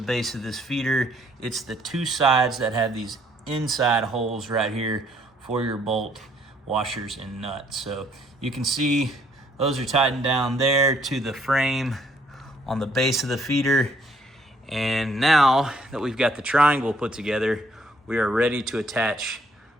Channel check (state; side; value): normal; both; correlation 0.65